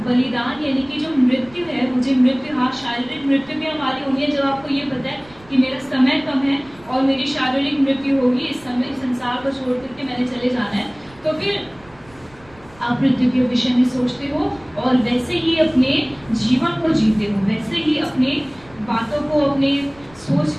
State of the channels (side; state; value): right; noise; rumble, 26 dB below the sound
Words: बलिदान यानी कि जो मृत्यु है, मुझे मृत्यु, हाँ शारीरिक मृत्यु भी हमारी होनी है। जब आपको ये पता है कि मेरा समय कम है और मेरी शारीरिक मृत्यु होगी, इस समय इस संसार को छोड़ करके मैंने चले जाना है, तो फिर आप मृत्यु के विषय में सोचते हो और वैसे ही अपने जीवन को जीते हो, वैसे ही अपने बातों को, अपने सोच